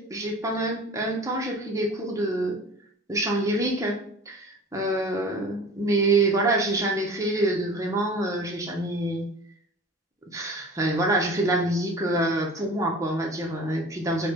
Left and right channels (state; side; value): normal; both; correlation 0.41